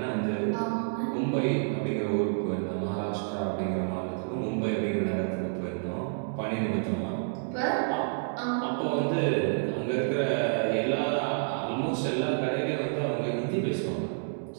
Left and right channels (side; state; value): left; silent; digital silence